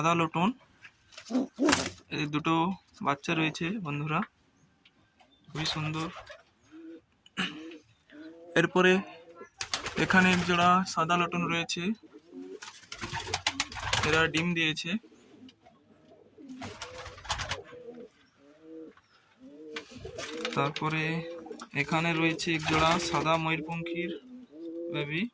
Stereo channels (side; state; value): both; identical; correlation 1.00